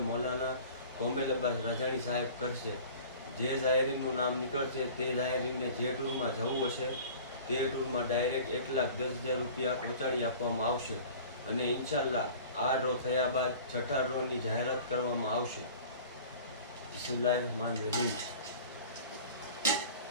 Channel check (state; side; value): inverted; both; correlation -0.43